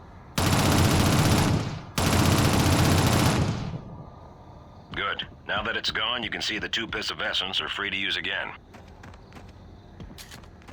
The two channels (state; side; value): identical; both; correlation 1.00